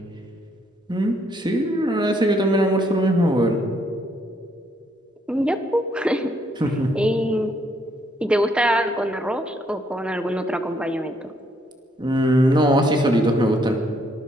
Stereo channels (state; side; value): normal; both; correlation 0.71